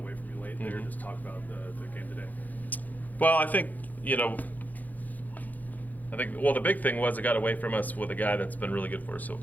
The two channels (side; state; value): right; late; 0.082 ms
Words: from you late there. Mhm. Just talk about the game today. Well, I think, the big thing was it got away from us with a guy that's been really good for us so